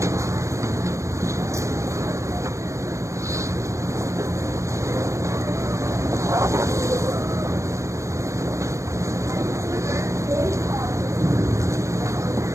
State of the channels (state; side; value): late; left; 0.15 ms